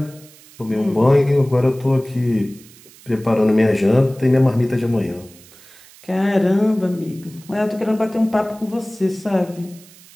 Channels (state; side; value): noise; right; hiss, 23 dB below the sound